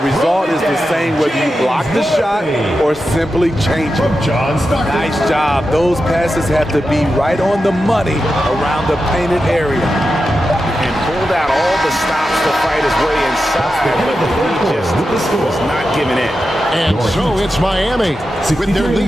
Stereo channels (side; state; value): both; normal; correlation 0.90